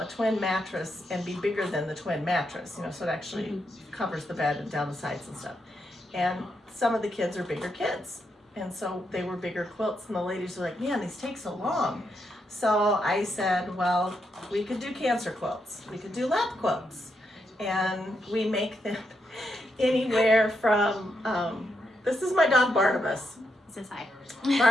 twin mattress, and be bigger than the twin mattress, so it actually covers the bed and down the sides and stuff. And some of the kids are bigger kids, and so they were bigger quilts, and the ladies were like, man, these take so long. So I said, well, we could do cancer quilts, we could do lap quilts, and we make them anywhere from, this is my dog Barnabas. Says hi.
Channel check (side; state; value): both; normal; correlation 0.81